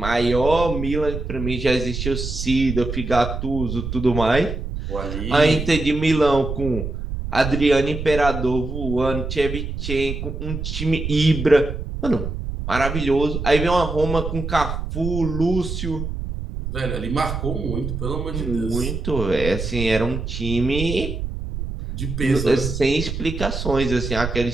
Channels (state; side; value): noise; right; rumble, 5 dB below the sound